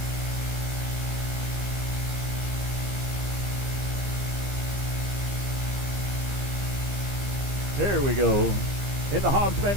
There we go. In the Hobbs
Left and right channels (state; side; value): late; left; 15 ms